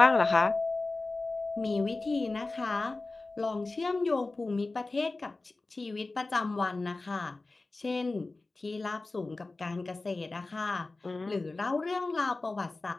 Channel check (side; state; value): right; quieter; 3.3 dB